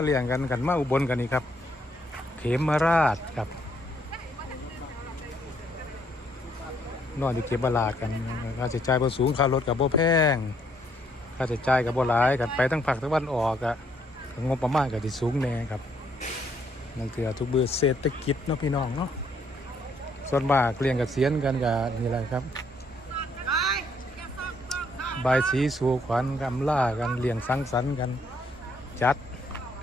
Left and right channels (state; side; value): normal; both; correlation 0.69